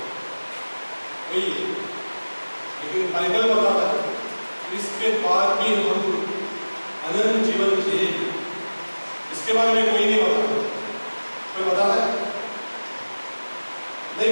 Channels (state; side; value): inverted; both; correlation -1.00